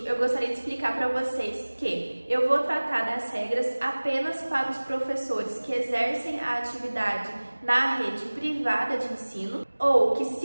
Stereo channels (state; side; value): inverted; both; correlation -1.00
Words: eu gostaria de explicar para vocês que eu vou tratar das regras apenas para os professores que exercem a atividade na rede privada de ensino ou que